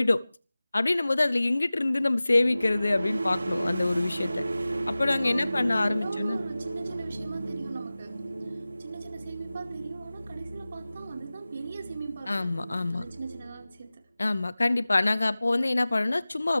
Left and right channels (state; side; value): inverted; both; correlation -0.97